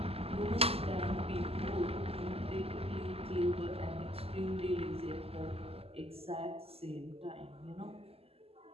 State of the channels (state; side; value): late; left; 0.29 ms